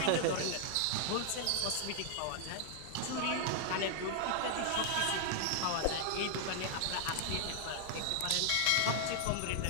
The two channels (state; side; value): different; both; correlation 0.00